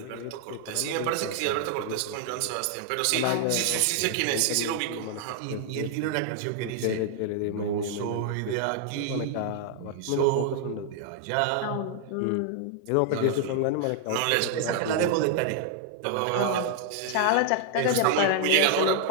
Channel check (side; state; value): both; different; correlation 0.00